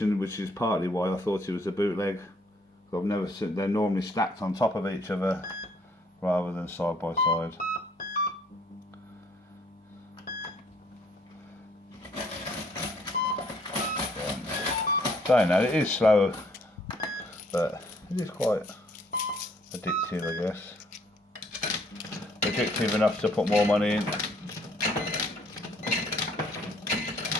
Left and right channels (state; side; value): normal; both; correlation 0.64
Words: which is partly why I thought it was a bootleg. I've never seen, they're normally stacked on top of each other, rather than side by side. Saying that, it is slow, but it is quite addictive, I guess. Addictive enough to put more money in.